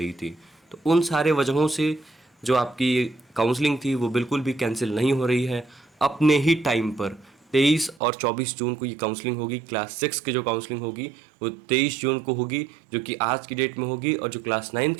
थी। तो उन सारे वजहों से जो आपकी काउंसलिंग थी वो बिल्कुल भी कैंसिल नहीं हो रही है। अपने ही टाइम पर 23 और 24 जून को ये काउंसलिंग होगी। क्लास 6 की जो काउंसलिंग होगी वो 23 जून को होगी, जो कि आज की डेट में होगी, और जो क्लास 9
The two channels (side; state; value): left; drops out; at 8.0 s